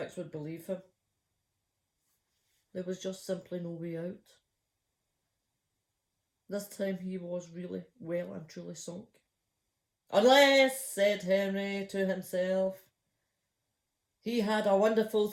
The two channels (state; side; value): identical; both; correlation 1.00